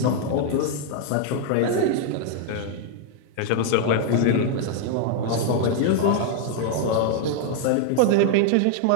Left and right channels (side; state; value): both; different; correlation 0.00